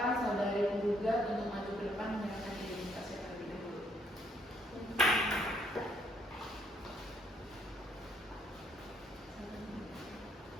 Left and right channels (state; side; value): normal; both; correlation 0.69